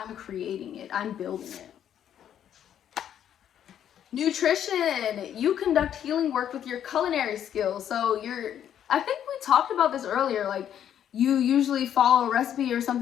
creating it. I'm building it. Nutrition. You conduct healing work with your culinary skills. So I think we talked about this earlier, like you usually follow a recipe or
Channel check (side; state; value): right; quieter; 9.9 dB